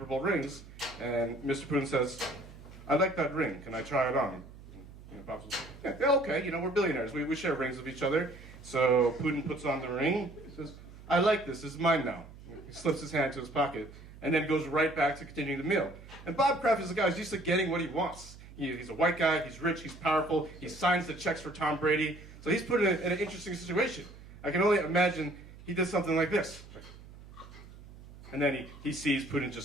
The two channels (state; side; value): noise; right; hum, 18 dB below the sound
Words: Bowl rings. And Mr. Putin says, "I like that ring. Can I try it on?" Bob says, yeah, okay. We're billionaires. We share rings with each other. So Putin puts on the ring. He says, "I like this. This is mine now." He slips his hand into his pocket, and then goes right back to continuing the meal. And Bob Kraft is a guy who's used to getting what he wants. He's a white guy, he's rich, he's powerful, he signs the checks for Tom Brady. So he's put in an interesting situation. I can only imagine he did something like this. And then he sees Putin